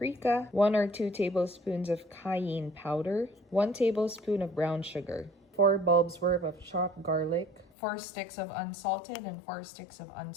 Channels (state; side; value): drops out; right; at 7.7 s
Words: 1 or 2 tablespoons of cayenne powder, 1 tablespoon of brown sugar, 4 bulbs worth of chopped garlic, 4 sticks of unsalted and 4 sticks of